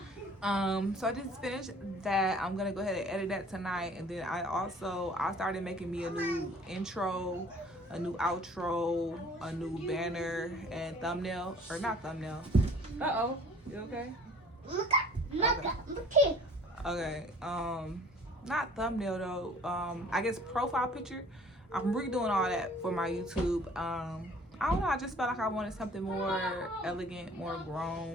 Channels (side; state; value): both; normal; correlation 0.51